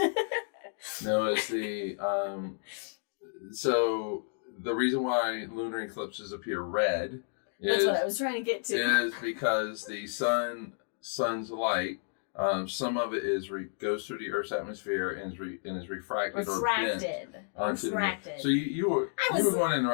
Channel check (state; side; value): silent; right; digital silence